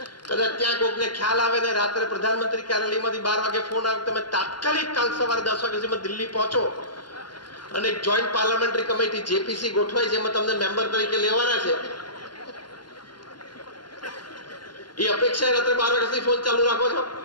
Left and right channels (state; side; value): late; right; 0.71 ms